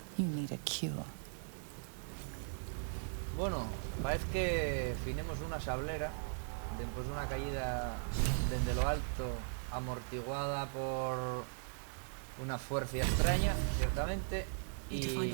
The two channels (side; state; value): left; silent; digital silence